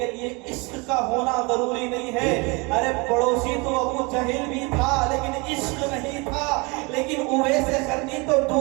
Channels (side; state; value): left; quieter; 28.1 dB